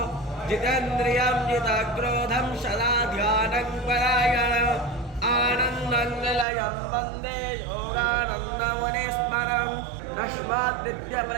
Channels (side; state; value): left; drops out; at 6.5 s